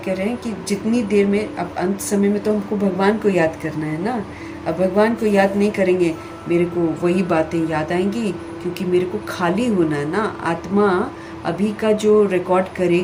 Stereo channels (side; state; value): both; identical; correlation 1.00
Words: रहे हैं कि जितनी देर में, अब अंत समय में तो हमको भगवान को याद करना है ना। अब भगवान को याद नहीं करेंगे, मेरे को वही बातें याद आएंगी, क्योंकि मेरे को खाली होना है ना। आत्मा अभी का जो रिकॉर्ड